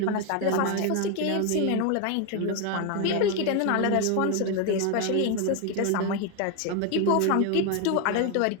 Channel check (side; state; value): both; different; correlation 0.01